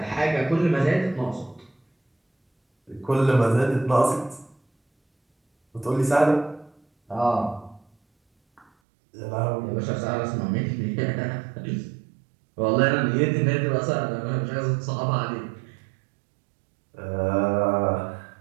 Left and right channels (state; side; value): drops out; left; at 8.7 s